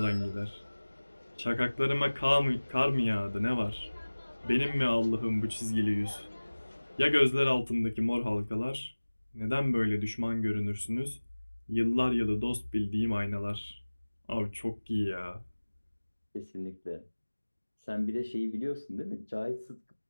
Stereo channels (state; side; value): inverted; both; correlation -1.00